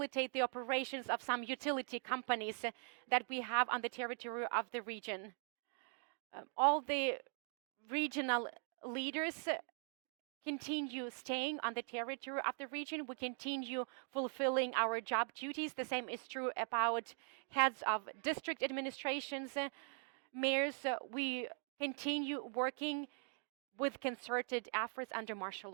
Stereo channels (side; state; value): left; silent; 50 dB below the other